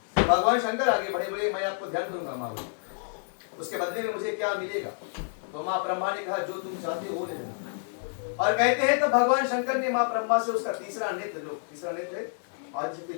भगवान शंकर आगे बढ़े, बोले मैं आपको ध्यान करूंगा माँ, बोले उसके बदले में मुझे क्या मिलेगा। तो माँ ब्रह्मा ने कहा जो तुम चाहते हो वो ले लेना। और कहते हैं तो भगवान शंकर ने माँ ब्रह्मा से उसका तीसरा नेत्र आदिशक्ति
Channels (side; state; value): right; silent; digital silence